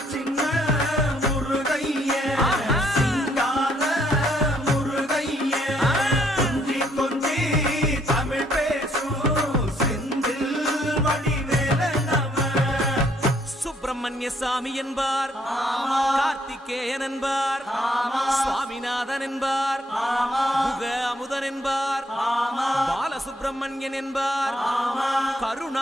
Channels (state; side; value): normal; both; correlation 0.68